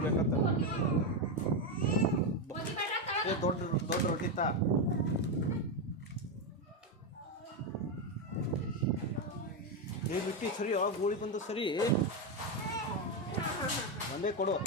ಬೇಕಂತ ದೊಡ್ಡ ದೊಡ್ಡ ರೊಟ್ಟಿ ತಾ ಬಿಟ್ಟು ಸರಿ ಆ ಗೋಳಿ ಬಂದು ಸರಿ ಒಂದೇ ಕೊಡು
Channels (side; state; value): both; normal; correlation 0.07